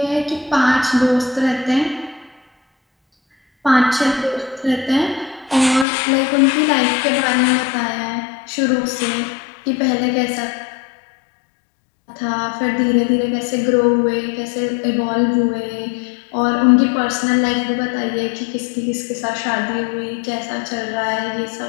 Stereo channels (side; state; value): right; drops out; at 5.9 s